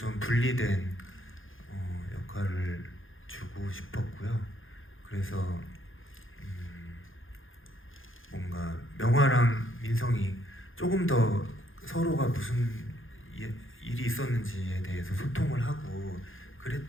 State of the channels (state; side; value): late; right; 0.59 ms